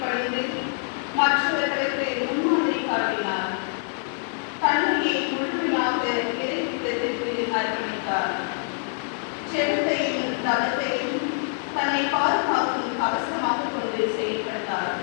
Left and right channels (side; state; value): right; silent; 60 dB below the other